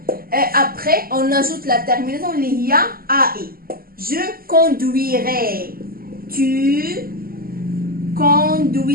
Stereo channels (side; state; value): left; late; 0.42 ms